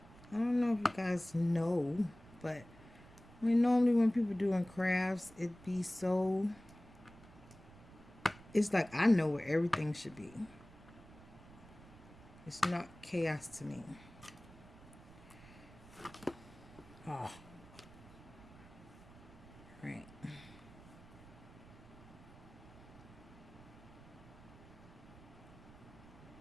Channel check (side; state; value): right; noise; rumble, 20 dB below the sound